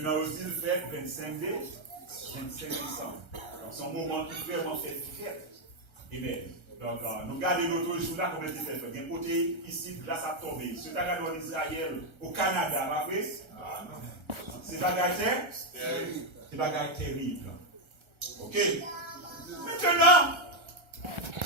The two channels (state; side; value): late; left; 1.3 ms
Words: aussi, le fait 25 décembre. C'est un moment qui fait vraiment fait fête. Et bien, donc, nous regardons l'autre jour là, comment il fait. Il y a un côté ici, glace à tomber. Si vous regardez en Israël, au Canada, pas vrai? C'est bagaille terrible. Ok? Maintenant,